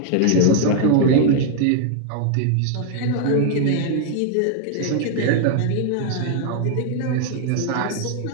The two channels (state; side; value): different; both; correlation 0.00